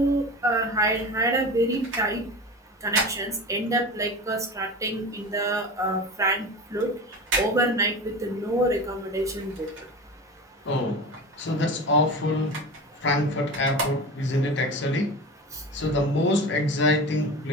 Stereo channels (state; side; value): normal; both; correlation 0.30